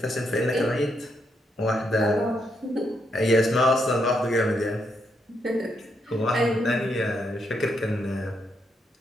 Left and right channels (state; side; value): normal; both; correlation 0.78